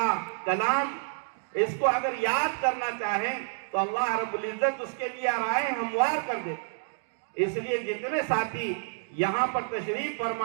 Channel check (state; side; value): silent; left; 59 dB below the other